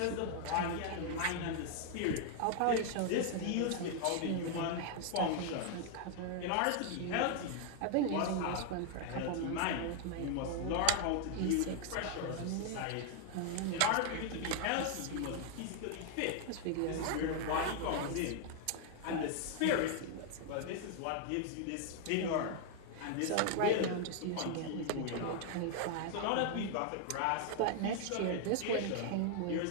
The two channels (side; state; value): both; different; correlation 0.00